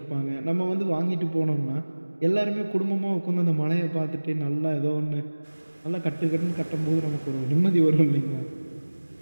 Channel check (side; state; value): both; inverted; correlation -1.00